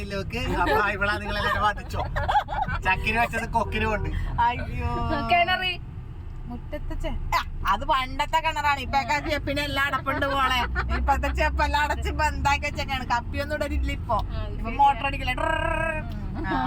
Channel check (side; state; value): both; identical; correlation 1.00